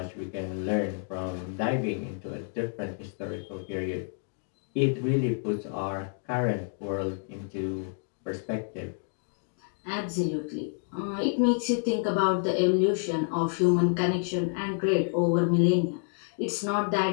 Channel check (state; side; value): silent; right; 57 dB below the other